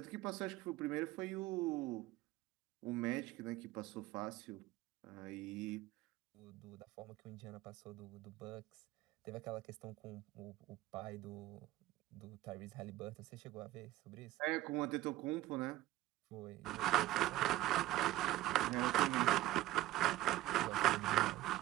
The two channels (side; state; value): left; quieter; 16.1 dB